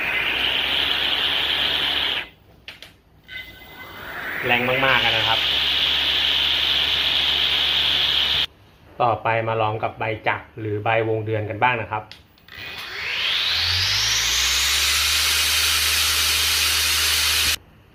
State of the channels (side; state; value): both; identical; correlation 1.00